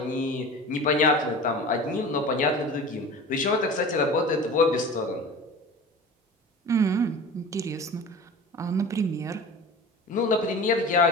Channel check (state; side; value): normal; both; correlation 0.36